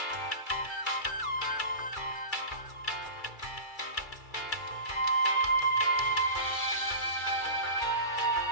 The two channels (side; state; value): right; late; 2.3 ms